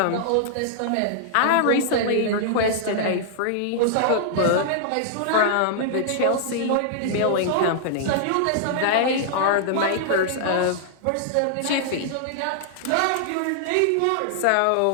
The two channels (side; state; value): both; different; correlation -0.01